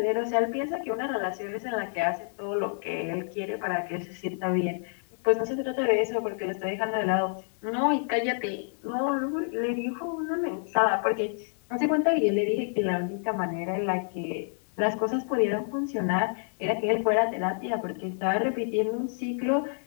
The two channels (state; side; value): silent; right; digital silence